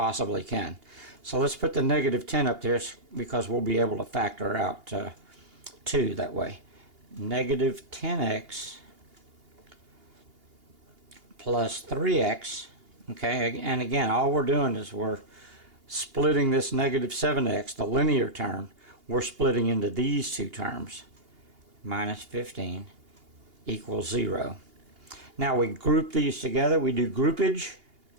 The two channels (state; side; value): late; left; 2.8 ms